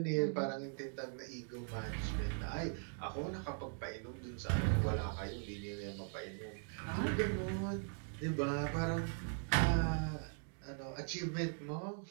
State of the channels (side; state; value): left; silent; 51 dB below the other